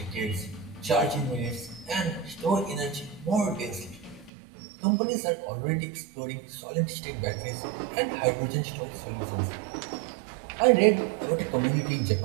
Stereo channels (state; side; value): drops out; left; at 4.3 s